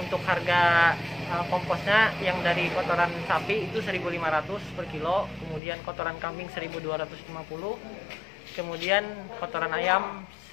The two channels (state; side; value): drops out; right; at 5.6 s